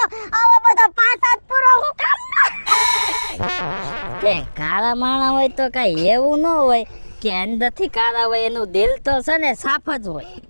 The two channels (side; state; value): both; inverted; correlation -1.00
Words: આવો બધો પાસાત પૂરો હું કામ કે કાળા માણા હોય તો કઈ એવું ન હોય કે અંદરથી કાળા હોય, એનું દિલ તો છે ને સાફ જ હોય.